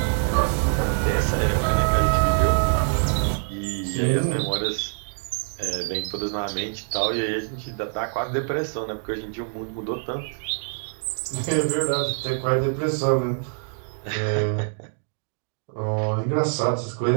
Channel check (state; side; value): silent; left; digital silence